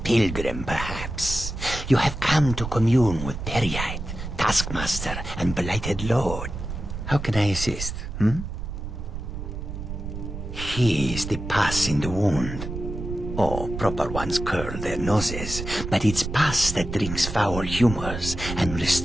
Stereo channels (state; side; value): noise; right; rumble, 7 dB below the sound